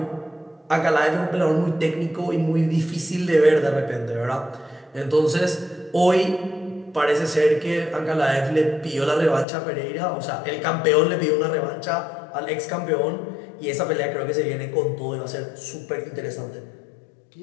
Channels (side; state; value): right; drops out; at 9.5 s